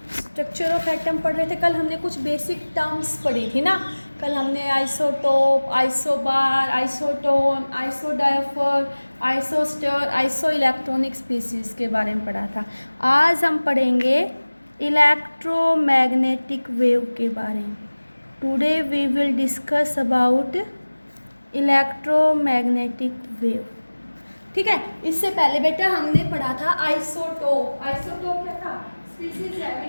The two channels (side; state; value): both; inverted; correlation -1.00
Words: ऑफ एटम पढ़ रहे थे। कल हमने कुछ बेसिक टर्म्स पढ़ी थी ना। कल हमने isotope, isobar, isotone, isodiaphere, isostere, iso electronic species के बारे में पढ़ा था। आज हम पढ़ेंगे इलेक्ट्रोमैग्नेटिक वेव के बारे में। Today we will discuss about electromagnetic wave. ठीक है। इससे पहले बेटा हमने पढ़ा था आइसोटोप। आइसोटोप क्या था? Species